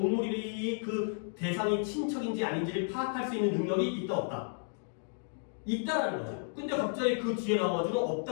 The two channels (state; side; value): silent; right; digital silence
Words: 그 대상이 친척인지 아닌지를 파악할 수 있는 능력이 있다 없다? 있다라는 거죠. 근데 갑자기 그 뒤에 나와가지고